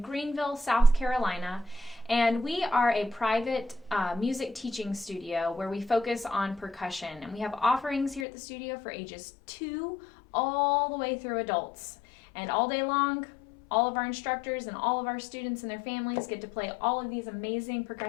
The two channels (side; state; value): right; drops out; at 8.2 s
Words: Greenville, South Carolina. And we are a private music teaching studio where we focus on percussion. And we have offerings here at the studio for ages 2 all the way through adults. And all day long, all of our instructors and all of our students and their families get to play all of these amazing